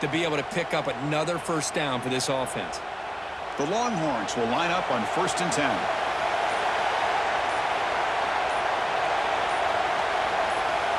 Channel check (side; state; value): both; identical; correlation 1.00